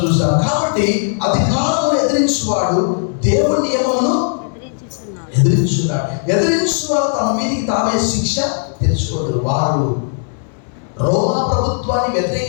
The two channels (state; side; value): silent; right; digital silence